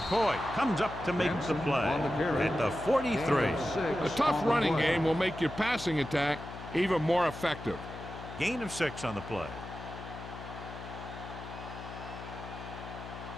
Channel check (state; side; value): noise; left; hum, 11 dB below the sound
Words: Coy comes up to make the play at the 43. A tough running game will make your passing attack even more effective. Gain of 6 on the play.